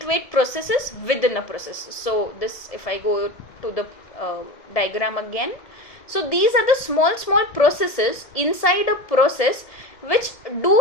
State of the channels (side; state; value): right; late; 1.7 ms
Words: processes within a process. So this, if I go to the diagram again. So these are the small processes inside a process which do